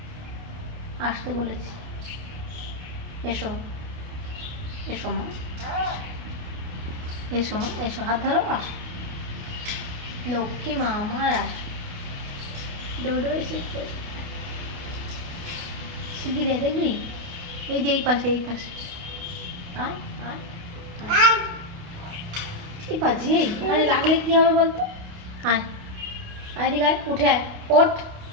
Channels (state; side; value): late; left; 28 ms